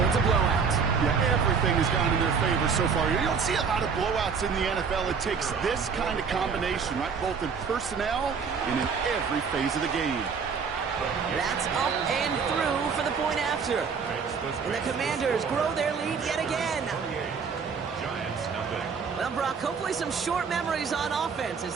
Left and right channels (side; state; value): left; quieter; 5.9 dB